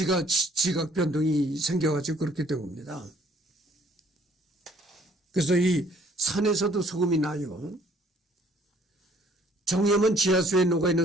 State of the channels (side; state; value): both; normal; correlation 0.60